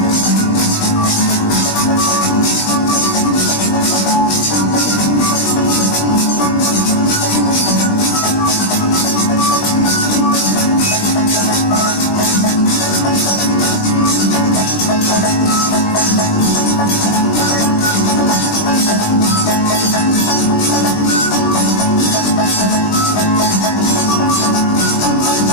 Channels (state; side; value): late; right; 20 ms